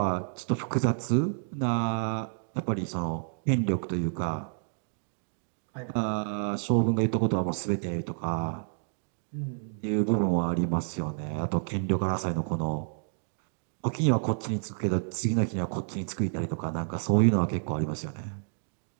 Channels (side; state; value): left; silent; digital silence